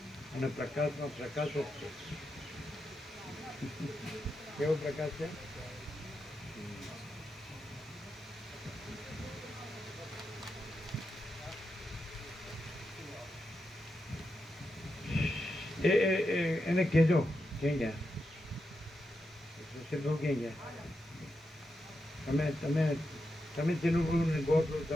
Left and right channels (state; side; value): normal; both; correlation 0.86